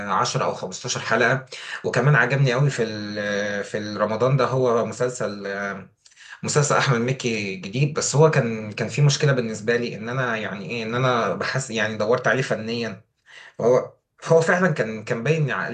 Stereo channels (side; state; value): both; identical; correlation 1.00